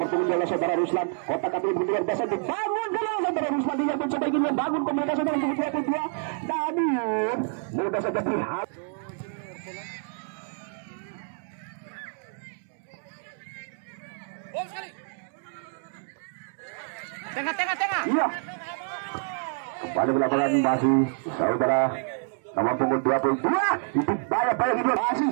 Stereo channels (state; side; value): silent; left; 59 dB below the other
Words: punggung adalah saudara Ruslan kotak-atik luar biasa dibangun kalau saudara Ruslan dia mencoba ingin membangun komunikasi dengan punggung 22 namun mudah saja berhati Tengah. iya kembali ke lapangan masih saudara nomor punggung 22 itu banyak ini masih